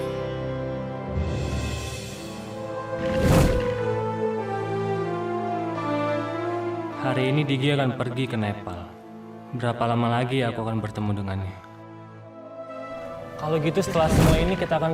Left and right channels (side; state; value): both; identical; correlation 1.00